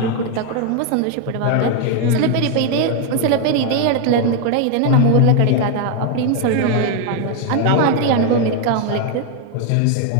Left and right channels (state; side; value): different; both; correlation 0.01